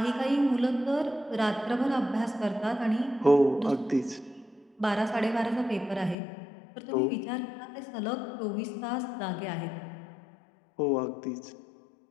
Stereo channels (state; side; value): drops out; right; at 6.2 s